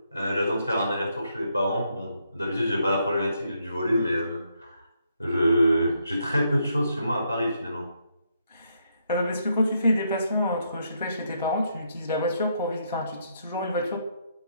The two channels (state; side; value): inverted; both; correlation -0.76